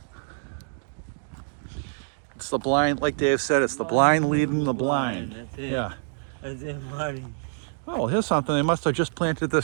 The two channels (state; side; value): silent; left; digital silence